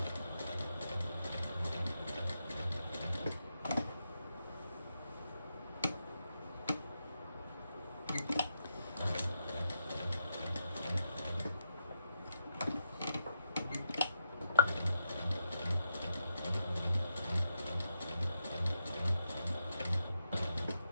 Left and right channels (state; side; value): inverted; both; correlation -0.84